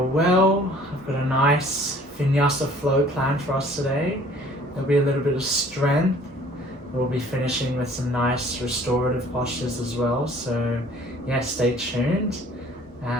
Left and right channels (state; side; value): normal; both; correlation 0.53